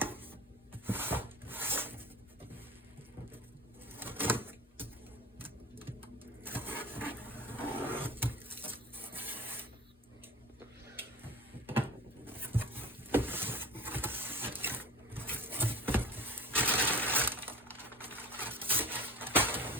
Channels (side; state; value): both; normal; correlation 0.38